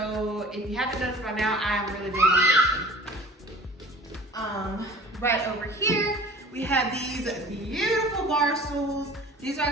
if you haven't noticed by now, I am really big on this. Right over here, we have these beautiful Barstools. These are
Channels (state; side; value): normal; both; correlation 0.44